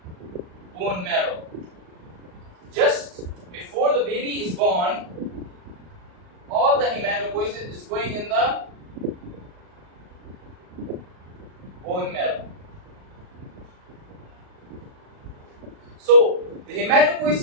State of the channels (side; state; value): left; late; 38 ms